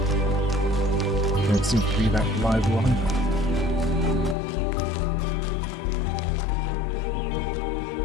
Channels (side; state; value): right; drops out; at 4.4 s